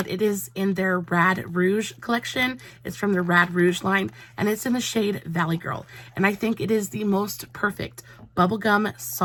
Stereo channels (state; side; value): identical; both; correlation 1.00